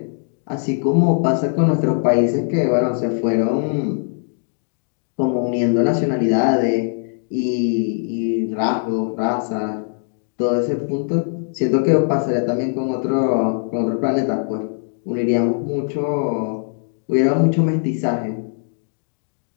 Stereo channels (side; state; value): right; silent; 65 dB below the other